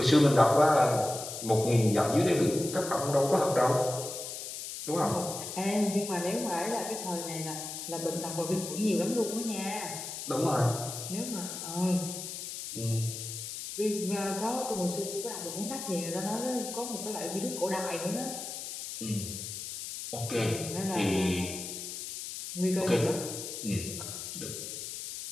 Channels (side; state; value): left; noise; hiss, 7 dB below the sound